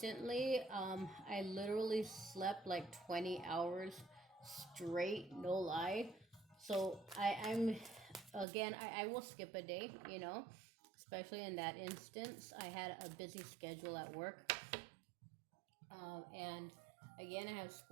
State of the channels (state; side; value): drops out; left; at 8.5 s